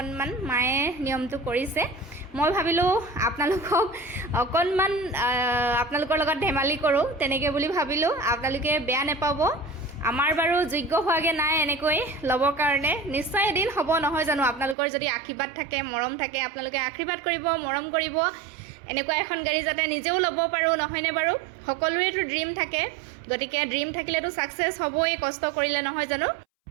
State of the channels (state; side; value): drops out; left; at 14.8 s